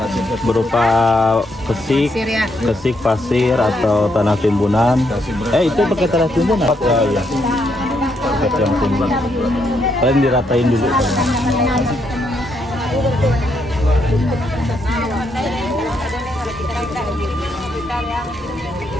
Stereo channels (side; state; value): both; normal; correlation 0.77